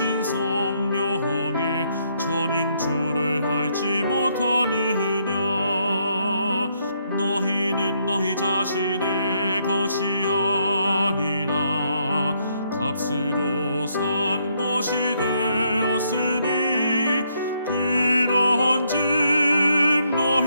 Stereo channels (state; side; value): inverted; both; correlation -0.73